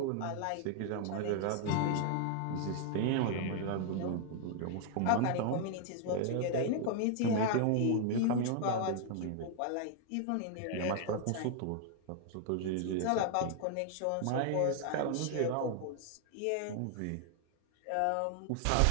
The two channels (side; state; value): both; different; correlation 0.00